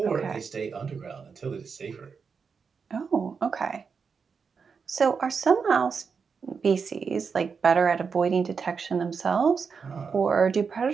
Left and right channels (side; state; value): left; quieter; 5.7 dB